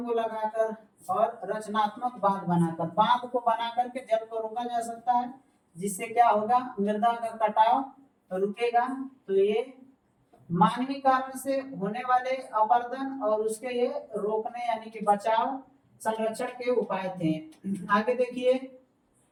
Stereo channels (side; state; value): both; identical; correlation 1.00